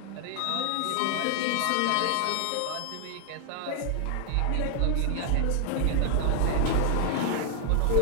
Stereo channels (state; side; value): different; both; correlation 0.00